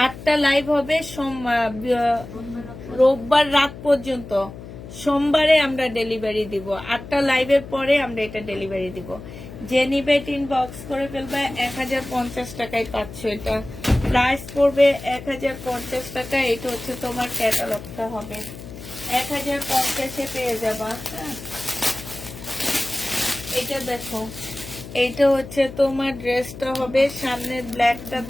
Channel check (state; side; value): noise; left; hum, 13 dB below the sound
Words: 8টা লাইভ হবে রোববার রাত পর্যন্ত। সোমবারে আমরা ডেলিভারি দিব। 8টা লাইভের পরে আমরা এটা ডেলিভারি দিব। যে নিবে ইনবক্স করে ফেলবে। 1050 টাকায় পাচ্ছ এটা। প্রাইস পড়বে 1050 টাকা। এটা হচ্ছে তোমার ক্যাটালগটা হবে, 1050-এ পেয়ে যাবা। হ্যাঁ, এটা দেখো, এইটা হচ্ছে তোমার ড্রেসটা হবে। সামনের ব্ল্যাকটা